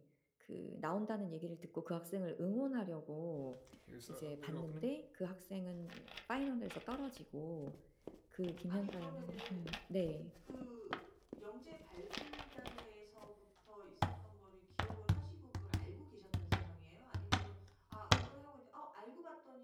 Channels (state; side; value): identical; both; correlation 1.00